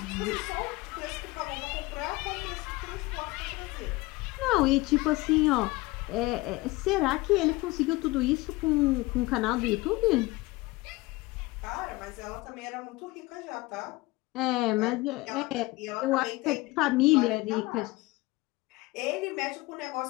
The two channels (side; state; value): right; quieter; 21.3 dB